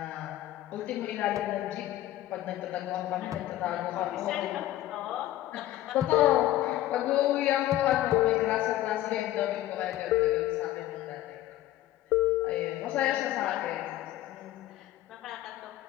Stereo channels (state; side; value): quieter; right; 14.6 dB